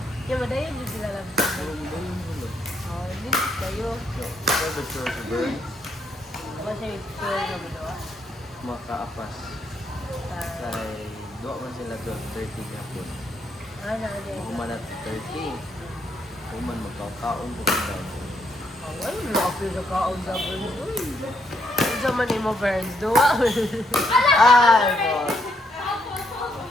Yung madayon din sila lang. Hindi kayo. Private store sa burn, Kasi store na ginawa. makaapas. Kay duwa man sila 12:30 gapon. Ano din? Human at 30. Human magkakaon po daw. Ay, lapis na kaon sa burn. Uy! Ano sa man mo, Burns? Duwa? Ay, boss.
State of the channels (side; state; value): both; normal; correlation 0.75